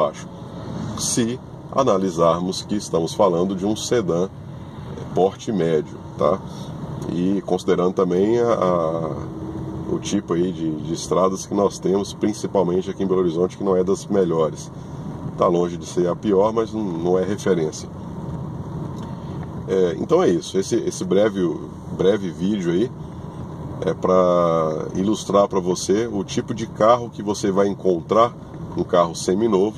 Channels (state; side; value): identical; both; correlation 1.00